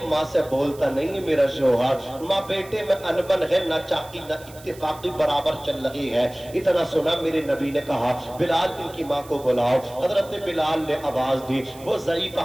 ماں سے بولتا نہیں ہے میرا شوہر، ماں بیٹے میں انبن ہے، نہ چاقی نہ اتفاقی برابر چل رہی ہے۔ اتنا سنا میرے نبی نے کہا بلال ان کی ماں کو بلاؤ۔ حضرت بلال نے آواز دی، وہ ضعیف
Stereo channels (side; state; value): right; noise; hiss, 21 dB below the sound